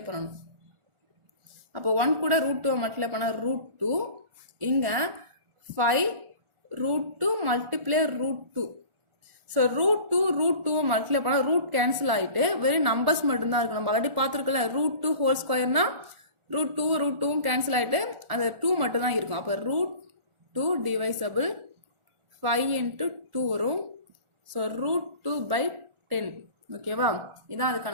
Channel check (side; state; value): left; late; 1.4 ms